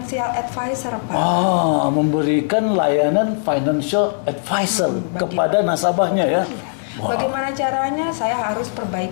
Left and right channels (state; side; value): silent; right; digital silence